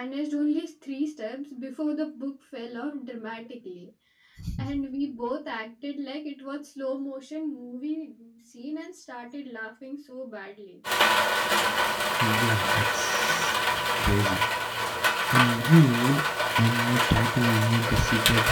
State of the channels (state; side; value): identical; both; correlation 1.00